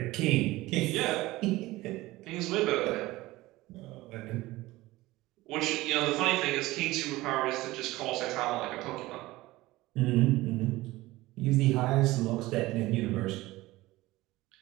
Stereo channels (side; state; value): left; quieter; 18.7 dB